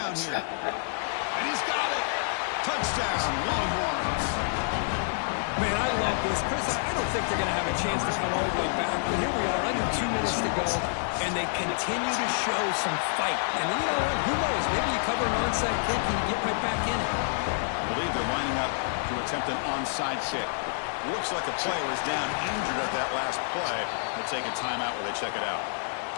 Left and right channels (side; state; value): right; silent; digital silence